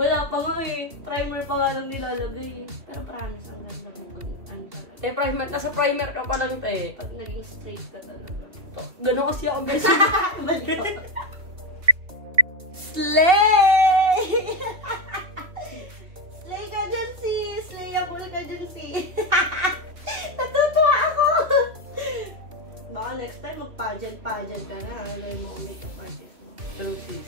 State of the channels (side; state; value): left; late; 2.8 ms